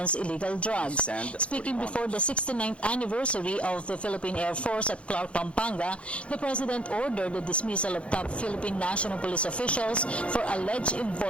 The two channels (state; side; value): late; right; 0.060 ms